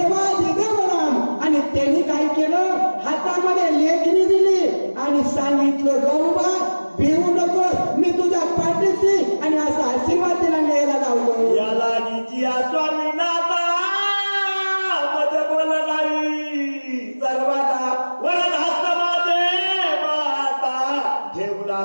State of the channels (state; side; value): inverted; both; correlation -1.00